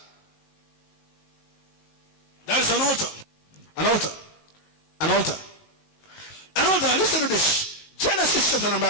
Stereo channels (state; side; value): late; right; 19 ms